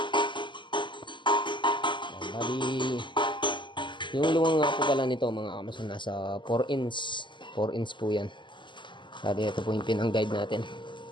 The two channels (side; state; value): right; late; 0.23 ms